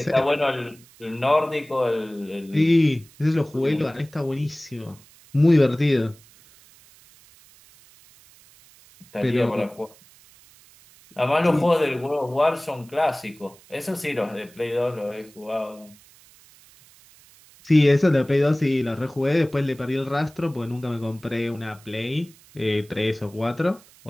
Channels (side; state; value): right; noise; hiss, 26 dB below the sound